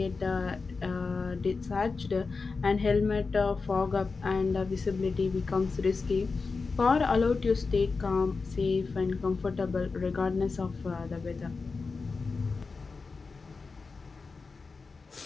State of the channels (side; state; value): right; quieter; 4.4 dB